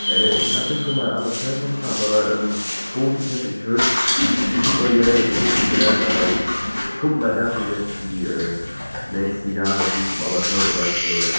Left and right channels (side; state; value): both; inverted; correlation -1.00